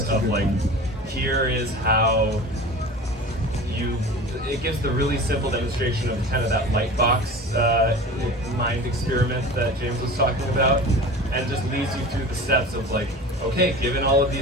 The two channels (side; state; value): both; normal; correlation 0.36